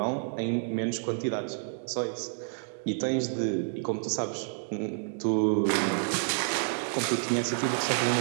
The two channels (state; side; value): silent; left; digital silence